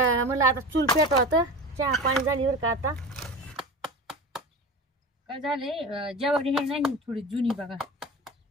मला आता चूल पेटवा होतं, चहा पाणी झाली बरं का. आता काय झालंय, जेवढी हे नाही थोडी जुनी बघा,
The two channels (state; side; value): normal; both; correlation 0.31